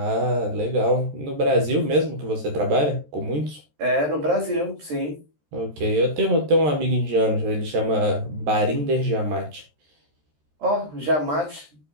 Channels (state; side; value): late; left; 13 ms